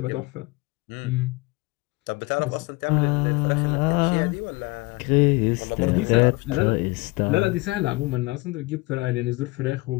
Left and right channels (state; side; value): quieter; right; 24.0 dB